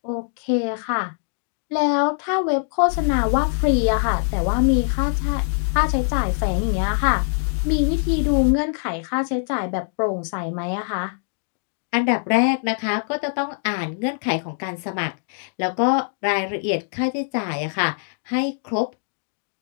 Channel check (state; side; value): silent; right; digital silence